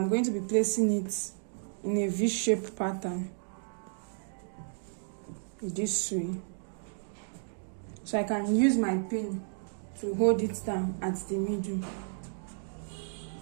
going to be placing it in a V-shaped pattern this way, so I can use my pin to hold it down at the middle.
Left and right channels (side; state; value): left; silent; digital silence